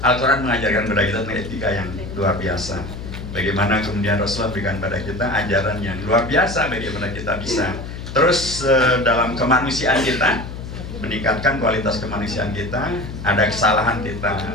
Al-Quran mengajarkan kepada kita tentang etika yang luar biasa. Bagaimana kemudian Rasulullah berikan pada kita ajaran yang luar biasa, bagaimana kita bisa terus dalam kemanusiaan kita, meningkatkan kualitas kemanusiaan kita. Ada kesalahan kita,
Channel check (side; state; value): left; noise; hum, 9 dB below the sound